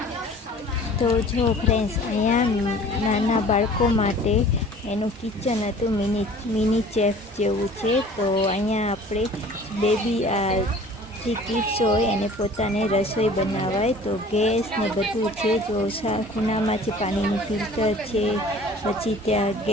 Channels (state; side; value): normal; both; correlation 0.47